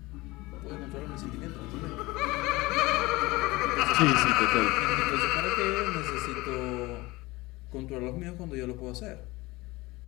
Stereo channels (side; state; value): right; quieter; 21.4 dB